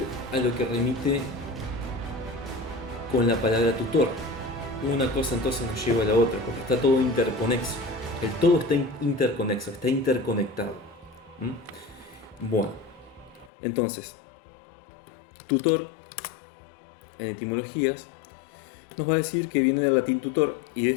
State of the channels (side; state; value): right; drops out; at 13.5 s